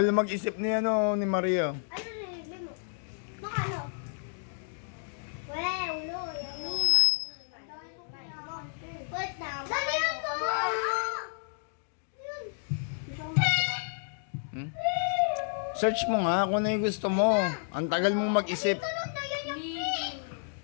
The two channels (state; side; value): silent; right; digital silence